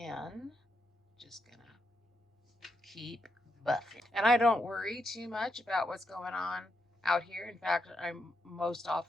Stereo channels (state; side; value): normal; both; correlation 0.82